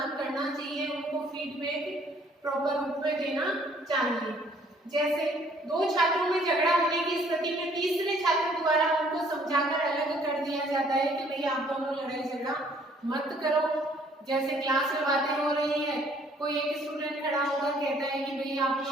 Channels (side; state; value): both; normal; correlation 0.61